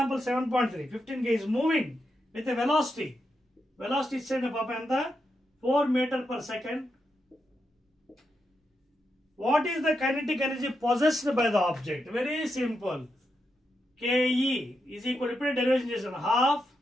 7.3, 15 kg is moving with a velocity ఇచ్చేయండి పాప ఎంత? 4 meter per second. What is the kinetic energy possessed by the object? Very simple. KE is equal to, ఇప్పుడు derivation చేసాను, half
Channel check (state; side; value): normal; both; correlation 0.84